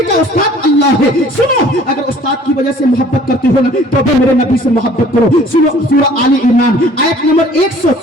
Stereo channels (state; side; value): normal; both; correlation 0.52